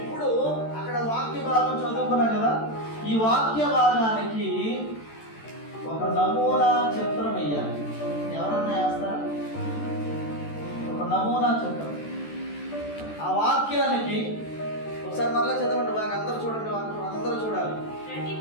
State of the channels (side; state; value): right; late; 13 ms